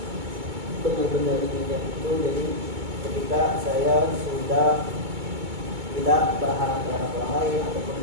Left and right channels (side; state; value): left; late; 2.2 ms